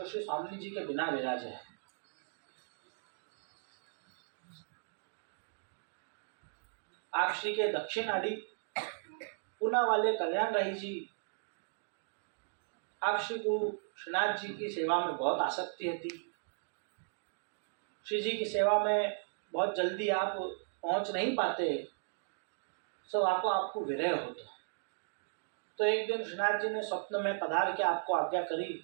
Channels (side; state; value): left; silent; digital silence